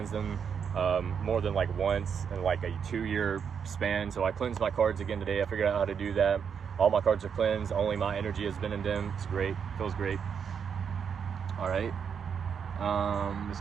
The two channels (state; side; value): quieter; left; 7.0 dB